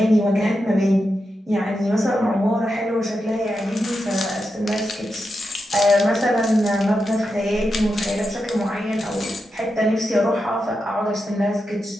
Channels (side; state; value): both; normal; correlation 0.88